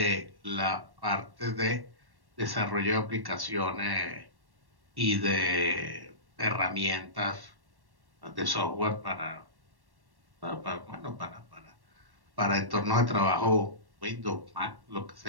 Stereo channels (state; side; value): late; left; 1.1 ms